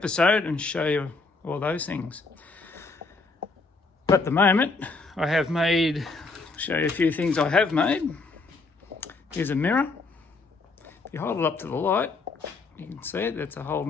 and show you all those things. But at the moment I have made, show you a few things I have made. Here's a mirror. If you hold it up to the light, you can see it, that's a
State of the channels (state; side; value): quieter; right; 3.8 dB